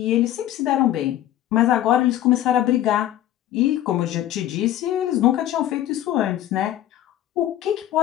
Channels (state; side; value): quieter; right; 12.8 dB